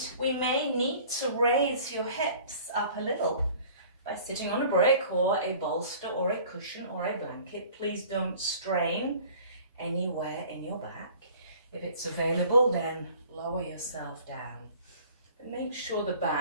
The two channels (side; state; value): both; inverted; correlation -0.49